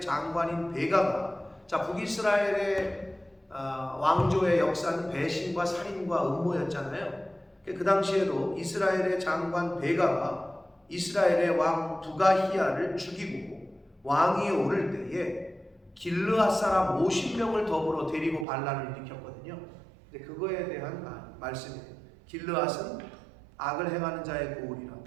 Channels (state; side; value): drops out; left; at 18.4 s